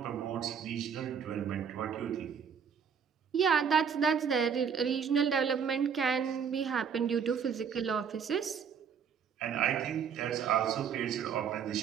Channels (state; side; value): quieter; left; 7.1 dB